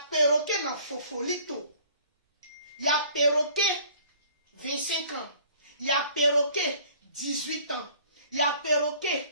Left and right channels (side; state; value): both; inverted; correlation -0.53